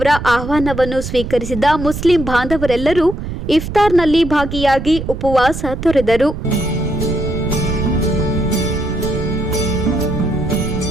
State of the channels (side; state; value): right; noise; rumble, 7 dB below the sound